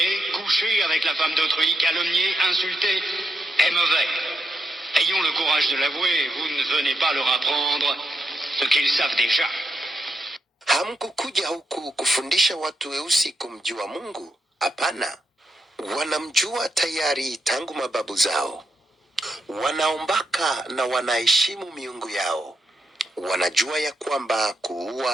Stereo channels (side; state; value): both; normal; correlation 0.82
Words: coucher avec la femme d'autrui, calomnier, insulter est mauvais. Ayons le courage de l'avouer, vous ne venez pas leur apprendre ce qu'ils savent déjà. Hamkukuja huku kufundisha watu weusi kumjua Mungu? Hapana. Wanamjua tayari tangu mababu zao. Wanaombaka na wanaheshimu miungu yao. Wanajua ya kwamba